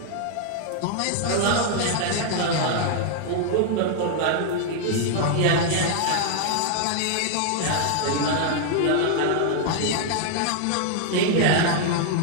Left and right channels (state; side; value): different; both; correlation 0.00